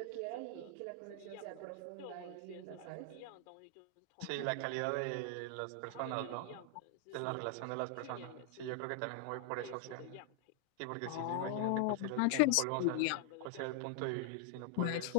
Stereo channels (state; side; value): different; both; correlation 0.00